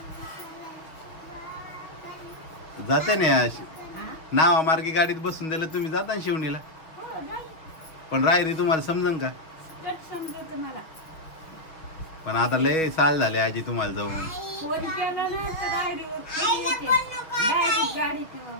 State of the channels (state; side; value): late; right; 6.5 ms